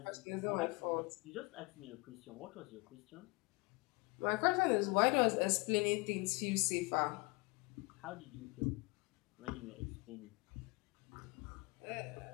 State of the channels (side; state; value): right; quieter; 26.8 dB